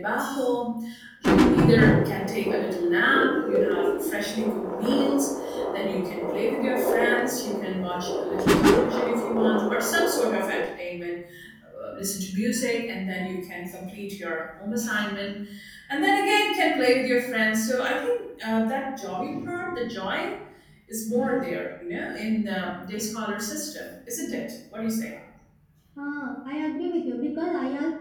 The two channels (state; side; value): identical; both; correlation 1.00